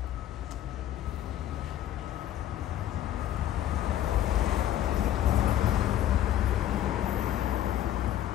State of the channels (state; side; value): quieter; right; 12.0 dB